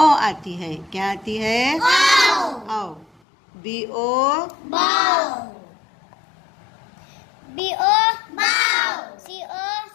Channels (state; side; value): drops out; right; at 3.1 s